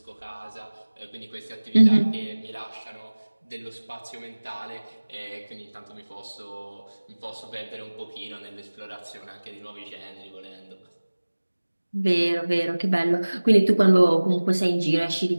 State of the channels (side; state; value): both; inverted; correlation -1.00